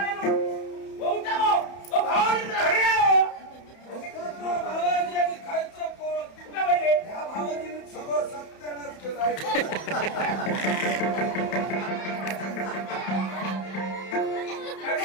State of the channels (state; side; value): late; right; 31 ms